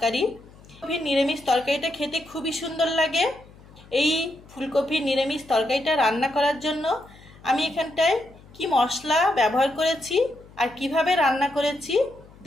ফুলকপির নিরামিষ তরকারিটা খেতে খুবই সুন্দর লাগে। এই ফুলকপির নিরামিষ তরকারিটা রান্না করার জন্য আমি এখানটায় কি মশলা ব্যবহার করেছি আর কিভাবে রান্না করেছি,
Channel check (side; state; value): left; noise; hum, 23 dB below the sound